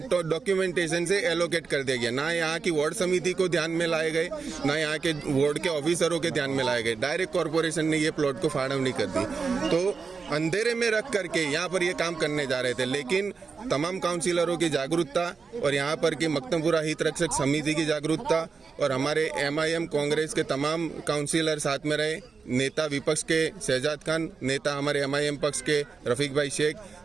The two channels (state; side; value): quieter; left; 5.1 dB